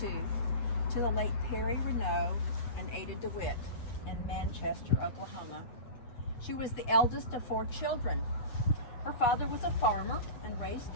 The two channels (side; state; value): right; late; 8.5 ms